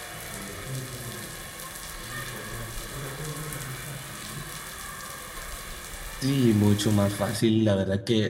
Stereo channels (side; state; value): both; identical; correlation 1.00